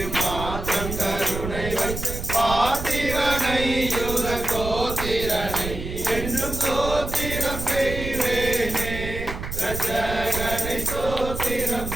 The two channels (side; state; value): right; noise; rumble, 7 dB below the sound